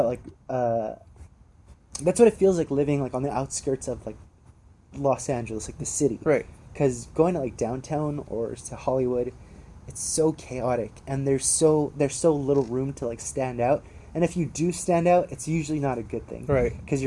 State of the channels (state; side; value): identical; both; correlation 1.00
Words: like that's what it feels like living like on the outskirts of like Los Angeles, like the city. Right. Because going to like downtown or to Hollywood, it's so chaotic and there's so little room to like stand out. And if you do stand out, it's usually not a good thing. Right. Because